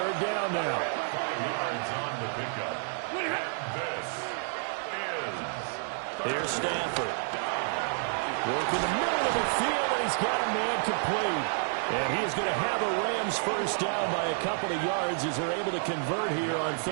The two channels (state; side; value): silent; left; 58 dB below the other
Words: down now. 5 yards on the pickup. And this is... Here's Stafford. Working the middle of the field, and he's got a man complete. And he is going to have a Rams first down by a couple of yards as they're able to convert here on